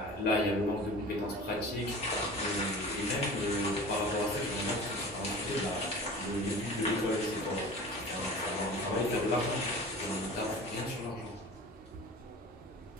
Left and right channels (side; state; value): both; normal; correlation 0.39